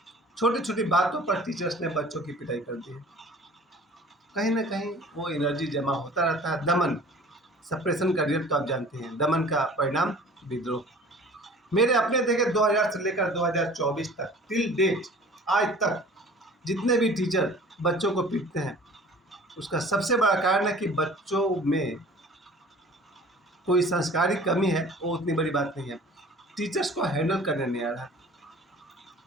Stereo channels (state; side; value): normal; both; correlation 0.46